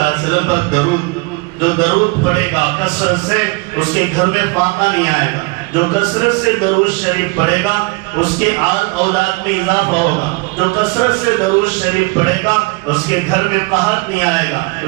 علیہ وسلم پر درود، جو درود پڑھے گا کثرت سے اس کے گھر میں فاقہ نہیں آئے گا، جو کثرت سے درود شریف پڑھے گا اس کے آل اولاد میں اضافہ ہوگا، جو کثرت سے درود شریف پڑھے گا اس کے گھر میں قحط نہیں آئے گا،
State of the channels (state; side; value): quieter; left; 27.2 dB